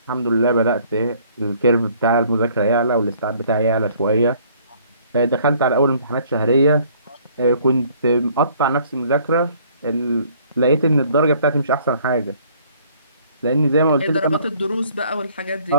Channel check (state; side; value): inverted; both; correlation -0.59